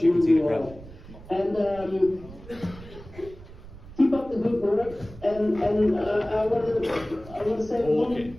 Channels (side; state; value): right; noise; rumble, 17 dB below the sound